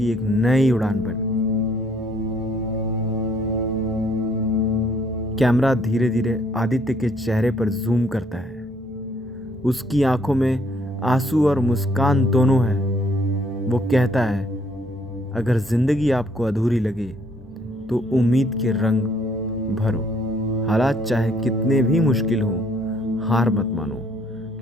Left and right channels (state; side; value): normal; both; correlation 0.65